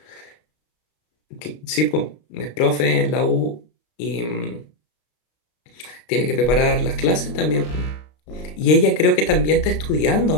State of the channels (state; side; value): late; right; 33 ms